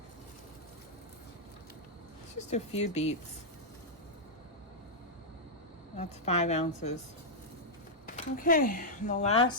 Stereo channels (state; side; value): normal; both; correlation -0.06